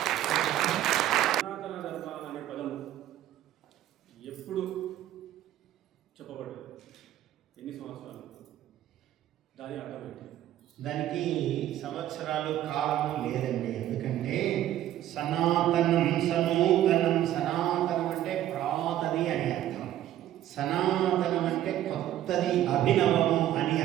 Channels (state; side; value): quieter; left; 12.6 dB